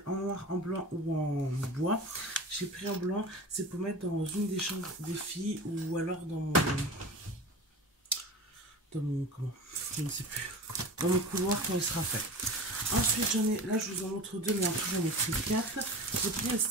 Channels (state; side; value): normal; both; correlation 0.33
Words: en noir, en blanc ou en bois. J'ai pris en blanc. C'est pour mettre dans une des chambres des filles. Ou alors dans mon... Comment? Je ne sais plus. Dans mon couloir quand il sera fait. Ensuite, j'en ai... Là, je vous en montre deux, mais en tout, j'en ai pris 4. J'ai pris les